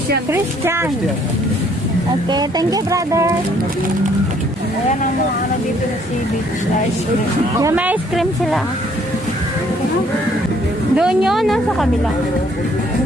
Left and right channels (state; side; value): normal; both; correlation 0.63